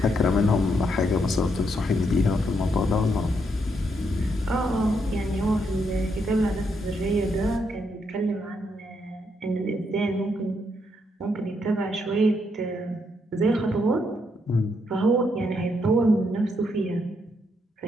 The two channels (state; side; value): normal; both; correlation 0.77